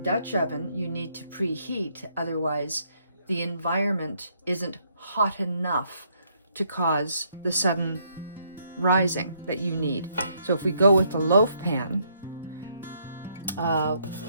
Dutch oven, you need to preheat, otherwise the environment isn't hot enough to cause the sudden rising that you need. So if we go with the loaf pan,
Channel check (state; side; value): inverted; both; correlation -0.71